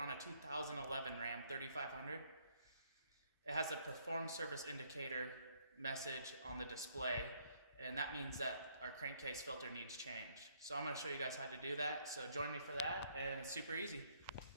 a 2011 Ram 3500. It has a perform service indicator message on the display, and that means that our crankcase filter needs change. So I'm going to show you guys how to do that, so join me for that, and it's super easy.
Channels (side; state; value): both; inverted; correlation -0.68